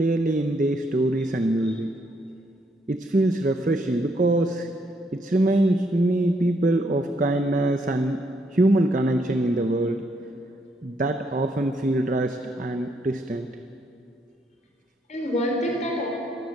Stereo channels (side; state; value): both; normal; correlation 0.74